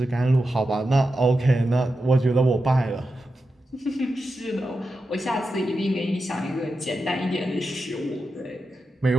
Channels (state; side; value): normal; both; correlation 0.90